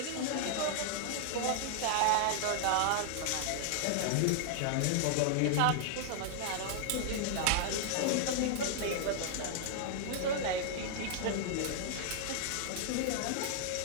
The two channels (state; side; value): different; both; correlation -0.01